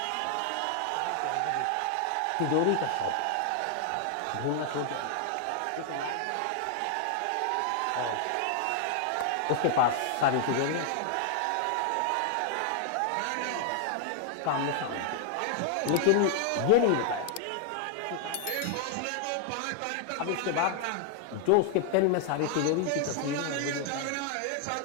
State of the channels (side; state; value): both; different; correlation 0.00